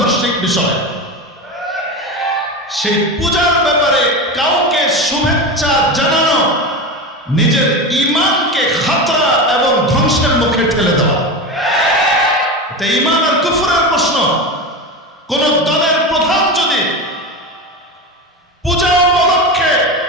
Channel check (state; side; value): normal; both; correlation 0.23